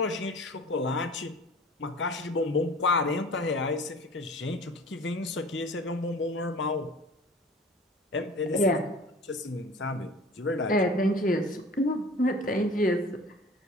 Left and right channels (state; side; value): normal; both; correlation 0.43